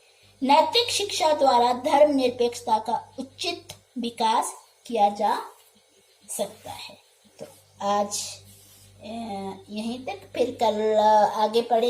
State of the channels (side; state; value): both; identical; correlation 1.00